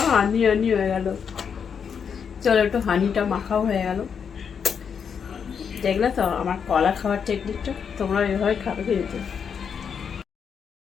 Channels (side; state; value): right; quieter; 6.9 dB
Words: হানি হানি হয়ে গেল। চলো একটু হানিটা মাখাও হয়ে গেল। দেখলে তো আমার কলা খাওয়ার টেকনিকটা, তোমরা এভাবে খাবে কিন্তু।